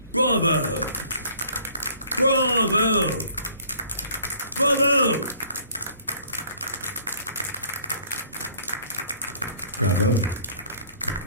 Bravo! Bravo! Bravo! Bravo.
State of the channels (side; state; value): both; inverted; correlation -0.56